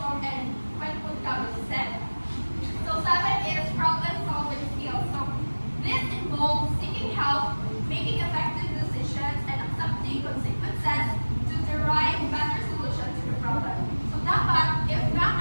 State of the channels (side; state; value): both; inverted; correlation -1.00